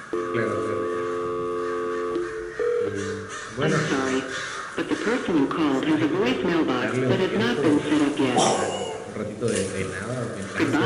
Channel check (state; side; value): identical; both; correlation 1.00